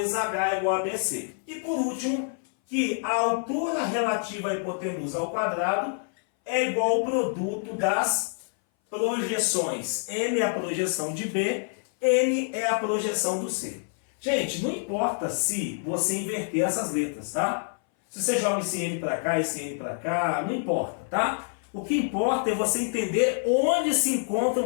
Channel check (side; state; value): right; silent; 59 dB below the other